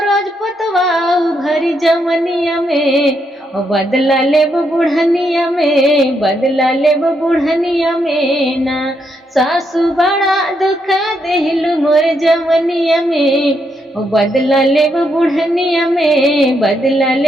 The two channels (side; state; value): both; normal; correlation 0.78